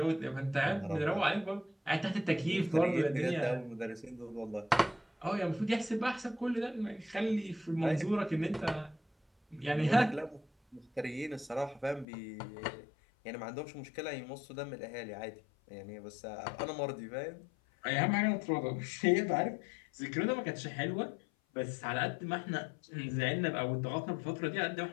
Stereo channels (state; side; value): drops out; right; at 12.1 s